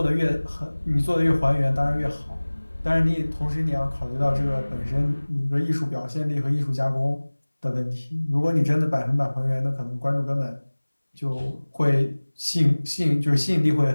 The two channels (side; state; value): both; inverted; correlation -1.00